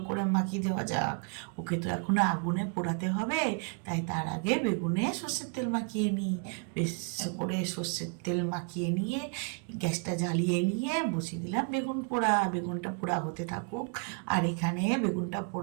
করে মাখিয়ে দেওয়া যাক। ওকে তো এখন আগুনে পোড়াতে হবে, তাই তার আগে বেগুনে সর্ষের তেল মাখিয়ে নিই। বেশ করে সর্ষের তেল মাখিয়ে নিয়ে গ্যাসটা জ্বালিয়ে নিয়ে বসিয়ে দিলাম বেগুন পোড়া। বেগুনটা পোড়া হতে থাকুক। আর এখানে বেগুনটা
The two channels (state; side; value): quieter; left; 36.0 dB